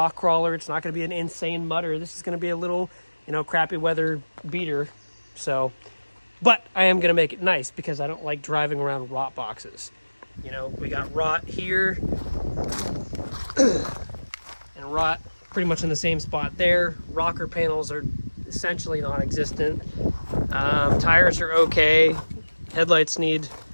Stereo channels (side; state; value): both; inverted; correlation -1.00